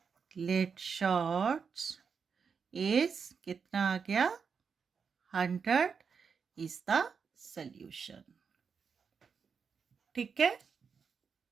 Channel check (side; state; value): left; quieter; 6.0 dB